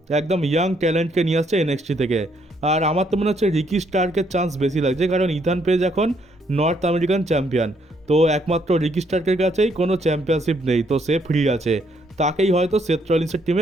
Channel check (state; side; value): normal; both; correlation 0.71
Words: একদম ইয়াং ট্যালেন্টকে নিয়ে আসছে এনএক্সটি থেকে। আর আমার তো মনে হচ্ছে রিকি স্টার্কের চান্স বেশি লাগছে, কারণ ইথান পেজ এখন নর্থ আমেরিকান চ্যাম্পিয়ন, তো একমাত্র রিকি স্টার্কের কাছেই কোনো চ্যাম্পিয়নশিপ নেই, তো সে ফ্রি আছে, তাকেই হয়তো সেথ রলিন্সের